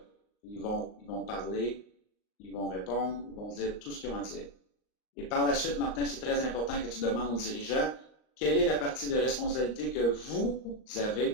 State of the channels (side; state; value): right; late; 38 ms